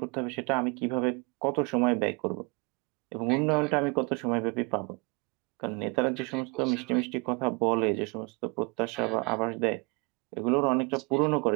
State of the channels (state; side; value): quieter; left; 29.9 dB